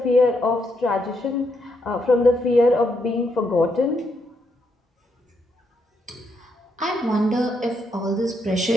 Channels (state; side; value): normal; both; correlation 0.78